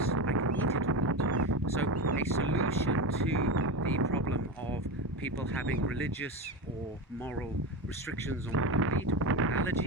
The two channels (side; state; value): both; normal; correlation 0.20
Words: I can eat it or not. So a solution to the problem of people having religious or moral restrictions on what they eat, or